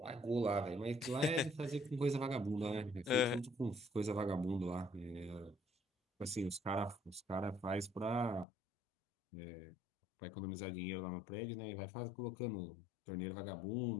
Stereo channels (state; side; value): drops out; right; at 8.5 s